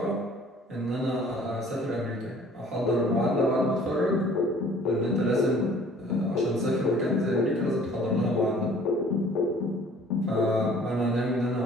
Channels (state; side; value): normal; both; correlation 0.53